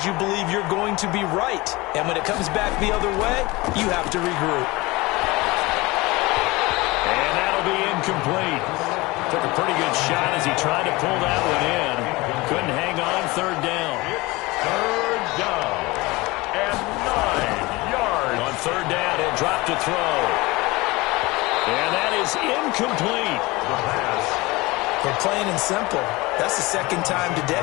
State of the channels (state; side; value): quieter; right; 22.3 dB